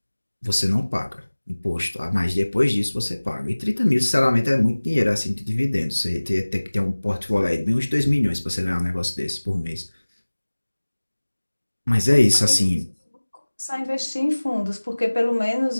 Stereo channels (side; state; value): both; inverted; correlation -1.00